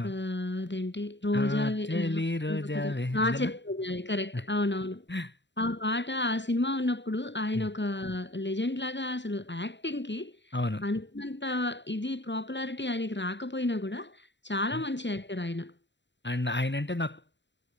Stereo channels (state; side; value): late; right; 0.52 ms